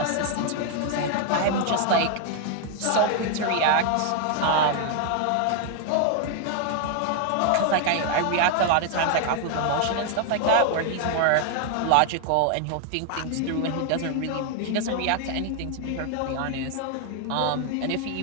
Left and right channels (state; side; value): different; both; correlation 0.00